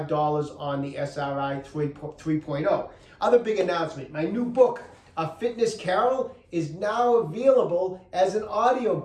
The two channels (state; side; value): identical; both; correlation 1.00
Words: on the SRI 3.0. Other big announcement, my new book, A Fitness Carol, is now available as an